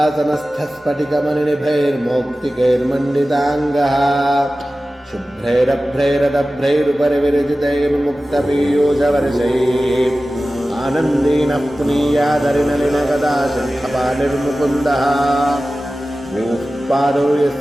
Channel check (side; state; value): both; normal; correlation 0.96